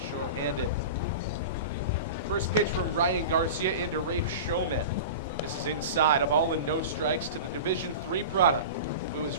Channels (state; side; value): inverted; both; correlation -0.31